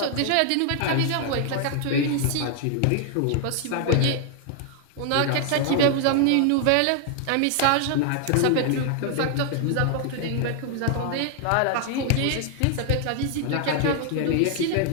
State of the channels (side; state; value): both; different; correlation 0.00